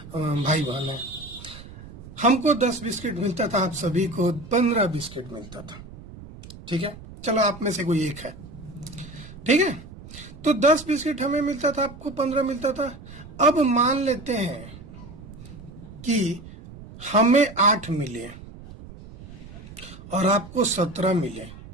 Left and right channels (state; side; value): noise; right; rumble, 16 dB below the sound